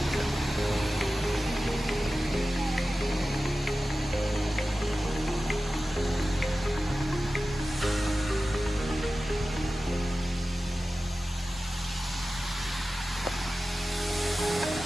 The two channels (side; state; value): both; normal; correlation 0.95